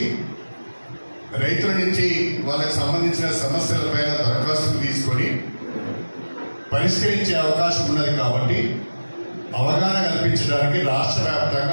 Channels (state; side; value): inverted; both; correlation -1.00